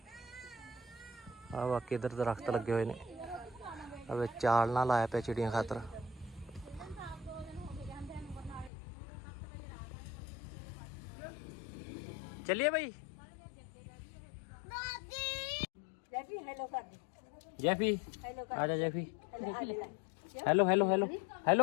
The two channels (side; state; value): right; drops out; at 8.7 s